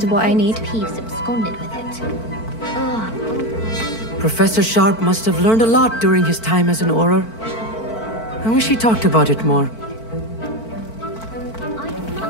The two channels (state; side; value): late; right; 4.5 ms